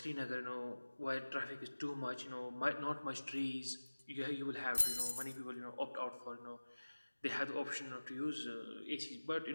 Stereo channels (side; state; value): both; inverted; correlation -1.00